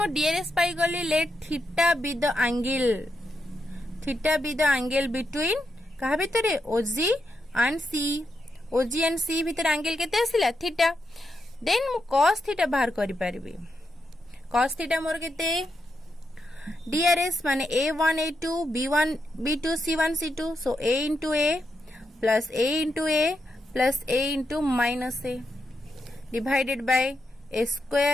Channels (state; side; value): normal; both; correlation 0.84